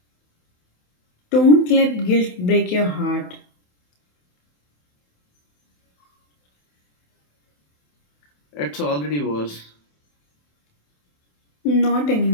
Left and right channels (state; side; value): late; right; 27 ms